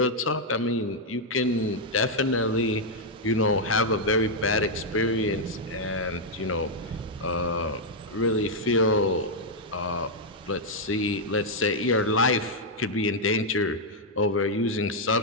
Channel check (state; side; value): normal; both; correlation -0.02